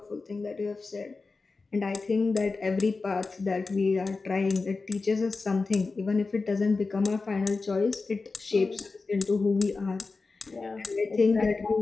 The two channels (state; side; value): quieter; right; 4.0 dB